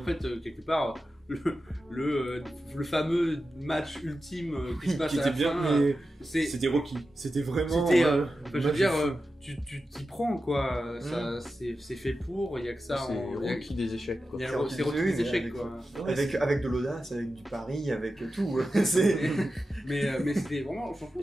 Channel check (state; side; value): normal; both; correlation 0.92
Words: fait, quelque part, le fameux match ultime qui se passe à la bien, fin, mais c'était Rocky. C'était vraiment. Je veux dire, tu t'y prends, quoi. Ça, c'est fait pour. Il y a que ça. C'est Rocky des échecs, quoi. C'est Rocky des échecs, quoi. Avec de l'audace, avec du pari, avec tout. mais c'était vraiment. Franchement,